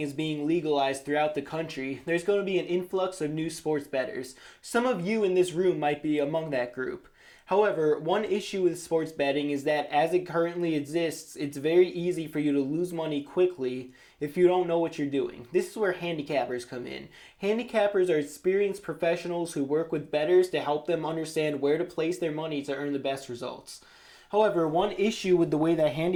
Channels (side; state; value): both; identical; correlation 1.00